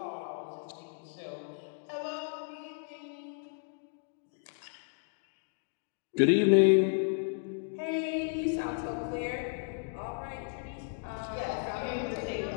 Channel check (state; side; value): silent; right; digital silence